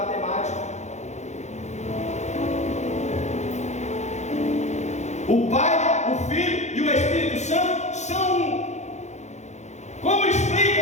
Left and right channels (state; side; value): late; right; 0.33 ms